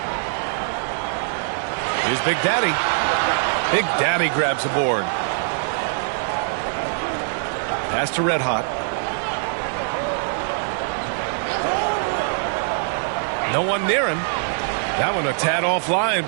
Here's Big Daddy. Big Daddy grabs the board. Pass to Red Hot. No one near him. That one a tad offline,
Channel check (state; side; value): silent; left; digital silence